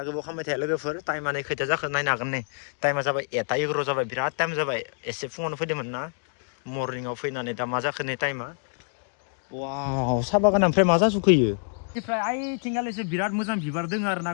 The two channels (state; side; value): silent; right; 60 dB below the other